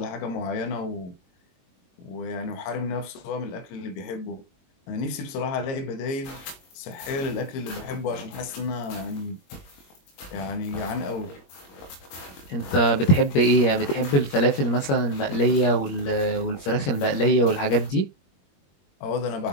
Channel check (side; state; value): right; late; 21 ms